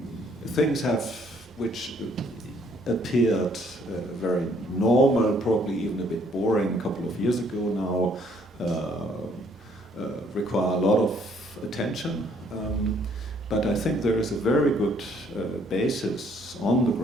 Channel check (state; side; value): normal; both; correlation 0.64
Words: Things which appeared very normal, probably even a bit boring a couple of years ago now, require a lot of attention. But I think there is a very good basis on the